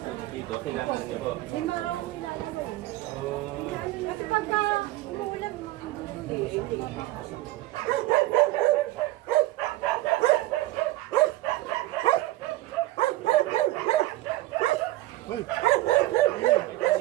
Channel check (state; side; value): quieter; left; 17.3 dB